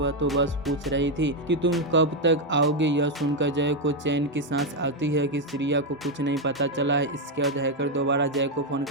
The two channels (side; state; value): both; normal; correlation 0.03